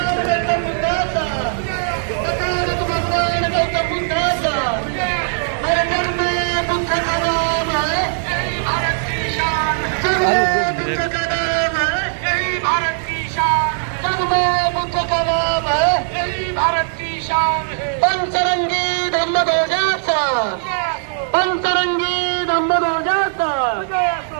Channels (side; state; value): left; silent; digital silence